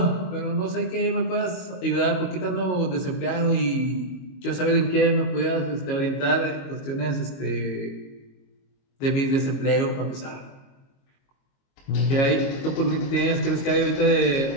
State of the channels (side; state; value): right; late; 22 ms